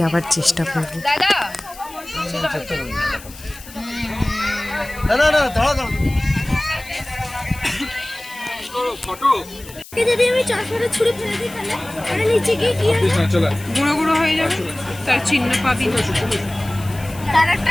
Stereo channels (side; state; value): left; noise; hiss, 18 dB below the sound